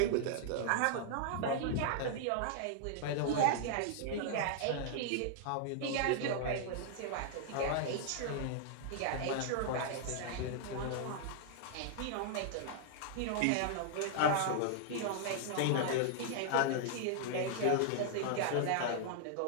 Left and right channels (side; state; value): both; different; correlation -0.01